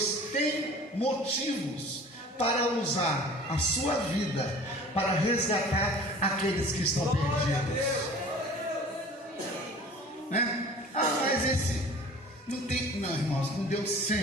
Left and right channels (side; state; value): both; normal; correlation 0.44